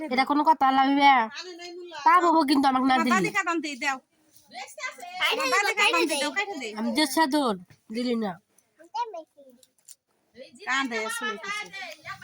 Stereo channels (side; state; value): both; identical; correlation 1.00